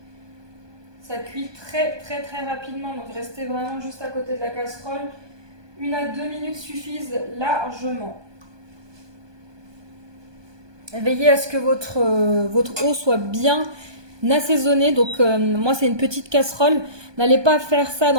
Ça cuit très rapidement, donc restez vraiment juste à côté de la casserole. 1 à 2 minutes suffisent largement. Veillez à ce que votre eau soit bien assaisonnée. Donc moi c'est une petite casserole. N'allez pas faire ça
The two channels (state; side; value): late; left; 1.2 ms